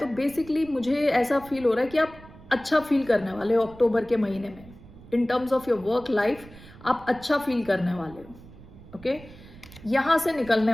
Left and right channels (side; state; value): right; noise; rumble, 20 dB below the sound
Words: बेसिकली मुझे ऐसा फील हो रहा है कि आप अच्छा फील करने वाले हो अक्टूबर के महीने में। In terms of your work life आप अच्छा फील करने वाले हो, ओके। यहाँ से निकलने